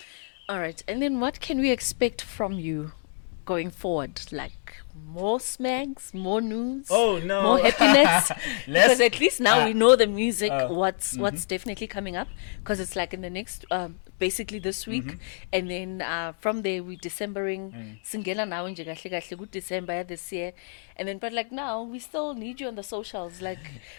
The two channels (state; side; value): silent; right; 60 dB below the other